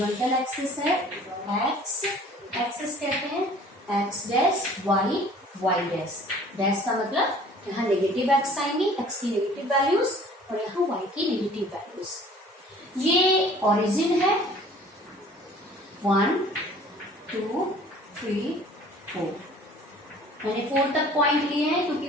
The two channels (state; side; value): normal; both; correlation 0.51